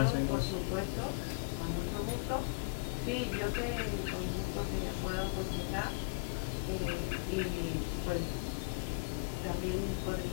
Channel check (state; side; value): quieter; right; 33.3 dB